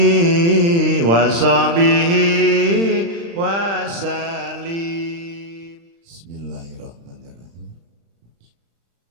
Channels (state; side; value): late; left; 35 ms